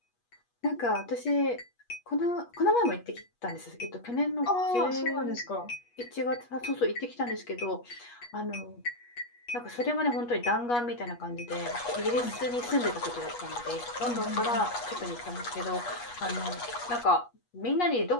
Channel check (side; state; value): right; late; 8.3 ms